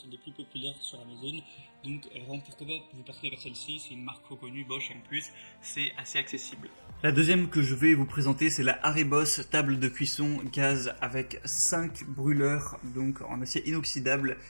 c'est des plus populaires sur Amazon. Donc vraiment pourquoi pas vous partez vers celle-ci, c'est une marque reconnue Bosch et en plus c'est assez accessible. La deuxième que je vais vous présenter, c'est la Haribos table de cuisson gaz avec 5 brûleurs donc en acier inoxydable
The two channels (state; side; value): inverted; both; correlation -1.00